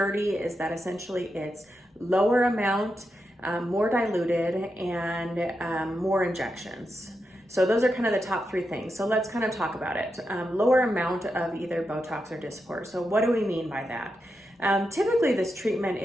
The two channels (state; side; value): normal; both; correlation 0.86